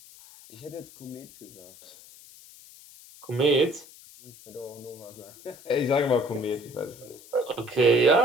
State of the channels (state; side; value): noise; left; hiss, 21 dB below the sound